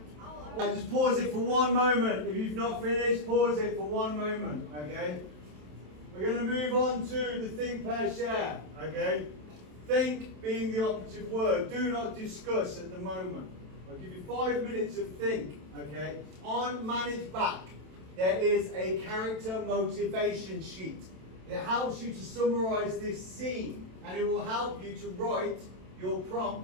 Just pause it for one moment. If you've not finished, pause it for one moment, okay? We're going to move on to the think, pair, share, okay? Think being the operative word. Do not discuss at the moment. I'll give you 5 minutes of think, okay? On manage back, there is a character motivation sheet. It helps you to summarize this scene, and it will help you to write your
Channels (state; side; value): late; left; 27 ms